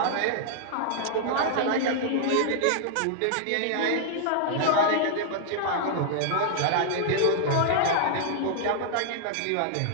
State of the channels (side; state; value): both; different; correlation -0.01